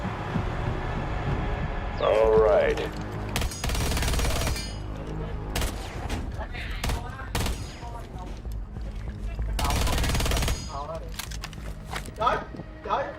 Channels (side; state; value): both; identical; correlation 1.00